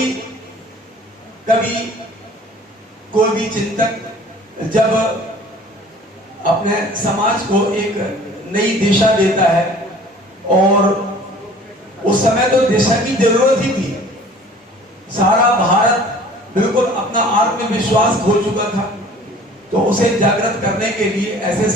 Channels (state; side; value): normal; both; correlation 0.49